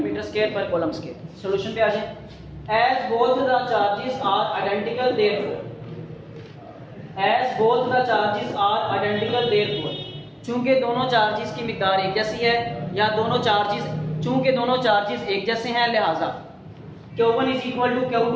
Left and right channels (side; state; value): both; identical; correlation 1.00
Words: metre square पर कूलम स्क्वायर। सॉल्यूशन पे आ जाए। As both the charges are identical therefore, as both the charges are identical therefore, चूंकि दोनों चार्जेस की मिकदार एक जैसी है, या चूंकि दोनों चार्जेस एक जैसे हैं लिहाजा Q1 is equal to